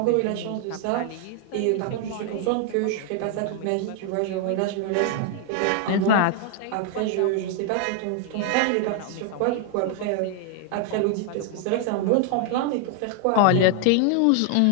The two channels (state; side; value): different; both; correlation 0.00